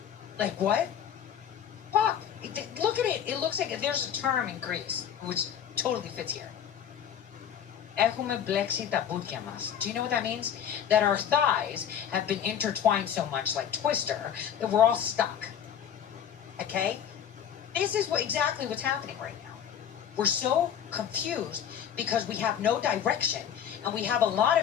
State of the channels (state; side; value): quieter; right; 9.0 dB